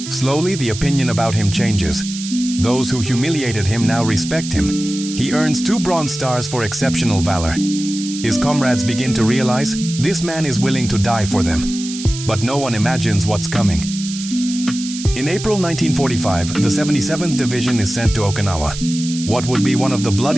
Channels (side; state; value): right; noise; hiss, 10 dB below the sound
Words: Slowly, the opinion about him changes. Those who humiliated him now respect him. He earns 2 Bronze Stars for exceptional valor. His comrades begin to realize this man is willing to die for them. But no one imagines what's coming. In April 1945, the 77th Division is sent to Okinawa, what would be one of the